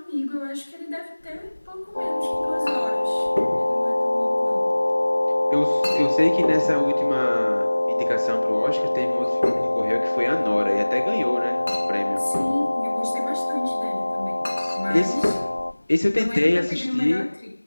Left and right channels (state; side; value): inverted; both; correlation -1.00